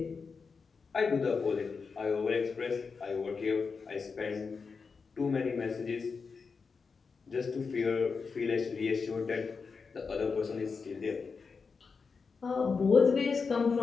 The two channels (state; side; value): quieter; right; 5.1 dB